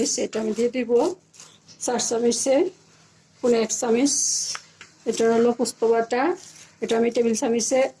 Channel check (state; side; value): identical; both; correlation 1.00